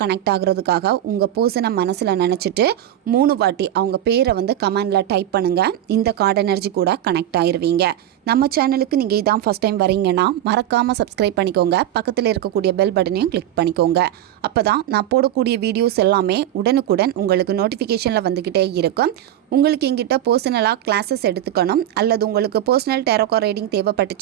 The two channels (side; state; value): left; quieter; 12.1 dB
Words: கனெக்ட் ஆகிறதுக்காக உங்கள் பர்சனை மனசில் நினச்சிட்டு 3 வாட்டி அவங்க பேரை கமெண்டில் டைப் பண்ணுங்கள். இந்த கார்டு எனர்ஜி கூட கனெக்ட் ஆயிருவீங்க. நம்ம சேனலுக்கு நீங்கள் இதான் ஃபஸ்ட் டைம் வரீங்கன்னா மறக்காமல் சப்ஸ்கிரைப் பண்ணிக்கோங்க. பக்கத்தில் இருக்கக்கூடிய பெல் பட்டனையும் கிளிக் பண்ணிக்கோங்க. அப்போ தான் நான் போடக்கூடிய வீடியோஸ் எல்லாமே உடனுக்குடன் உங்களுக்கு நோட்டிஃபிகேஷனில் வந்துக்கிட்டே இருக்கும். உங்களுக்கு எங்கிட்ட பர்சனலாக கிளாஸஸ் எடுத்துக்கணும் அல்லது உங்களுக்கு பர்சனல் டேரோகா ரீடிங்